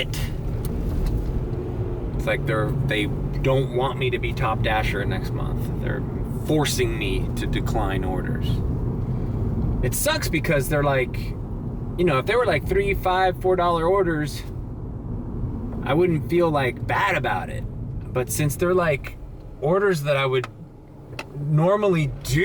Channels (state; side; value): identical; both; correlation 1.00